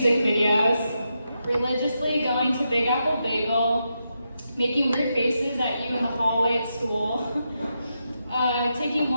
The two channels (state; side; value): inverted; both; correlation -0.85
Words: videos, religiously going to Big Apple Bagel, making weird faces at you in the hallway at school, taking